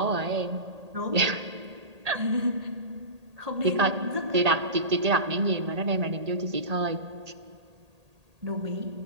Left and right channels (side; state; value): left; late; 1.8 ms